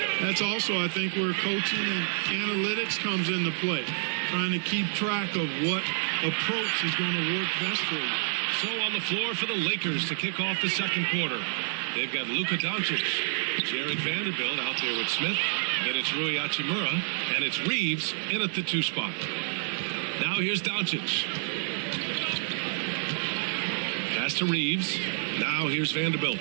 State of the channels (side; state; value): left; silent; 57 dB below the other